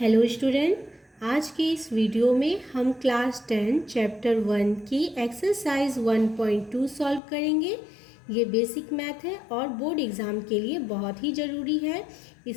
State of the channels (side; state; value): right; drops out; at 7.2 s